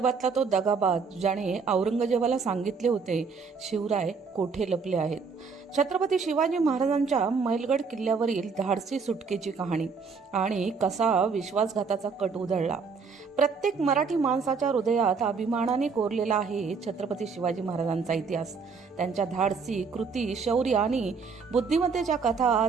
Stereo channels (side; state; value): left; quieter; 5.2 dB